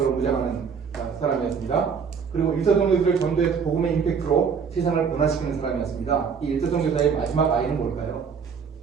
무장하는 사람이었습니다. 그리고 일터 선교들을 전도해서 복음의 임팩트로 세상을 변화시키는 사람이었습니다. 이 일터 선교사의 마지막 아이는 뭘까요?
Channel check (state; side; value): quieter; left; 6.2 dB